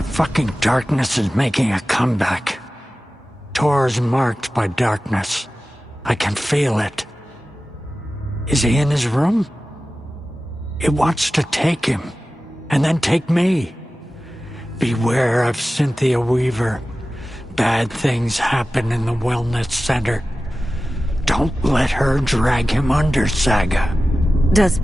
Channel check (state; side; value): normal; both; correlation 0.95